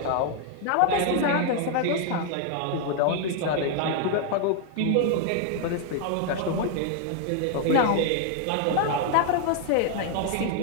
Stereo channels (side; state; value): both; different; correlation 0.00